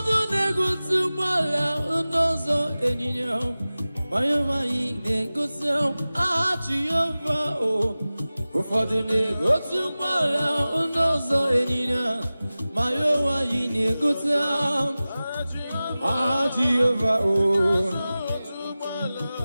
na-egosi mgbala ndọzọ enyinya ma ya nwaanyị na-egosi Jehova. Ụfọdụ na-egosi mgbala ndọzọ enyinya ma ya nwaanyị na-egosi Jehova.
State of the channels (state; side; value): inverted; both; correlation -0.97